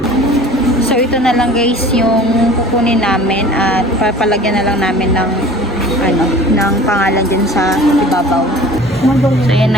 So, ito na lang guys yung kukunin namin at papalagyan na lang namin ng ng pangalan din sa ibabaw. So, yan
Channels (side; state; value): both; normal; correlation 0.44